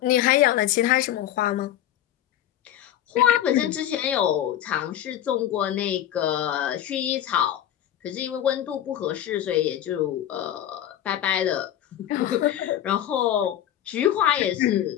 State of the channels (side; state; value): right; quieter; 11.6 dB